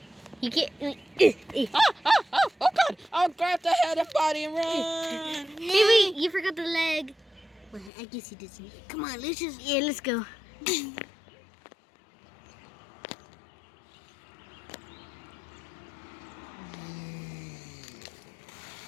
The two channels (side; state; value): right; drops out; at 7.9 s